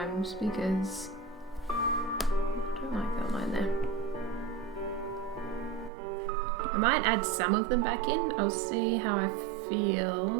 because I don't like that line there. I might add some of them back in. I'll see how I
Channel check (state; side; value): drops out; left; at 5.9 s